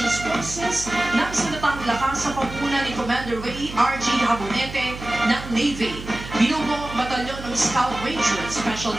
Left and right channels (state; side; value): noise; right; hum, 12 dB below the sound